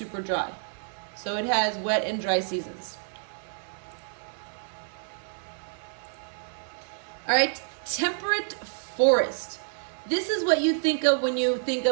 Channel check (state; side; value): silent; left; 59 dB below the other